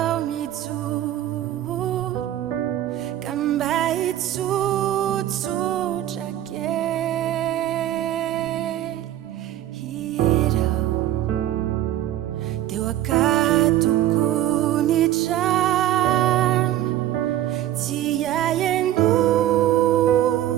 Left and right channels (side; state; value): left; quieter; 12.9 dB